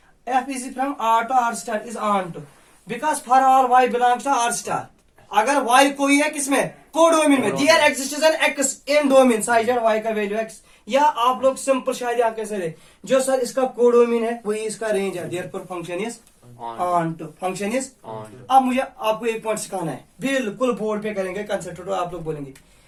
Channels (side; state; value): both; identical; correlation 1.00